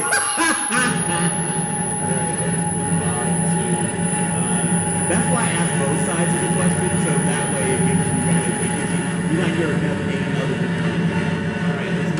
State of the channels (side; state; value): both; identical; correlation 1.00